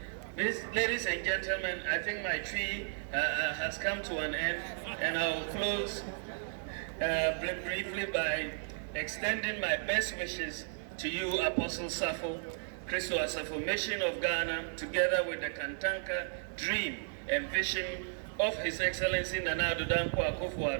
ladies and gentlemen, I think my tree has come to an end, and I'll close briefly by extending my best wishes to you, Apostle Safo Christo Asafo, Mission of Ghana, together with the Kantanka dream and vision of His Excellency Nana Addo Dankwa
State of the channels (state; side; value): silent; left; digital silence